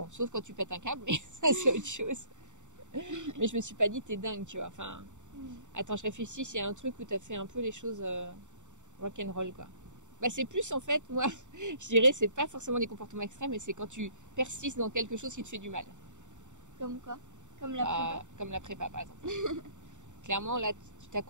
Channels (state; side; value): late; left; 0.85 ms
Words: sauf quand tu pètes un câble, mais ça c'est autre chose. Mais je me suis pas dit t'es dingue, tu vois. Enfin, attends, je réfléchis s'il y a un truc où t'as fait un peu les choses rock'n'roll, quoi. Bah c'est plus en fait, moi, je dirais, c'est pas forcément des comportements extrêmes, mais c'est quand tu persistes dans quelque chose qui te fait du mal. Comme quoi? Comme la prépa? Comme la prépa, par exemple. Clairement, là, tu